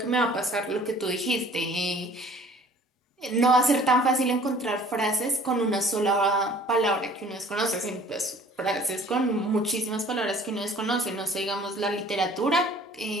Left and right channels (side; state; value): both; normal; correlation 0.51